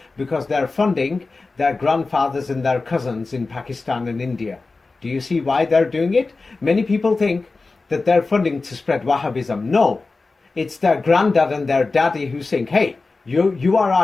because they're funding their grandfathers and their cousins in Pakistan and India. Do you see why they're doing it? Many people think that they're funding to spread Wahhabism. No, it's their granddad and their daddy who's saying, hey, you are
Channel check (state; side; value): quieter; right; 3.8 dB